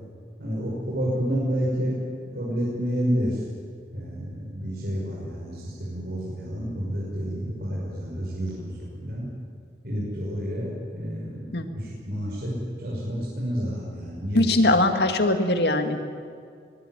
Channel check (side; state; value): both; normal; correlation 0.52